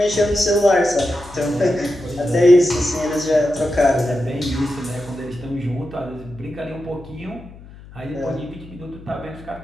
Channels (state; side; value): noise; left; hum, 19 dB below the sound